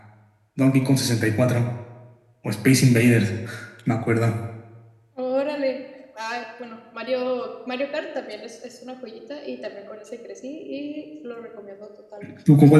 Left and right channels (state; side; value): identical; both; correlation 1.00